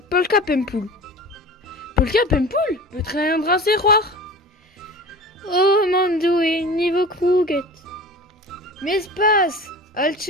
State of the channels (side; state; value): both; normal; correlation 0.37